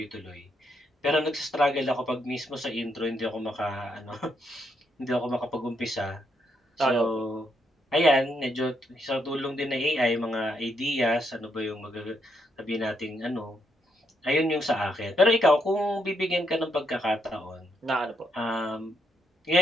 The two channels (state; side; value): normal; both; correlation 0.77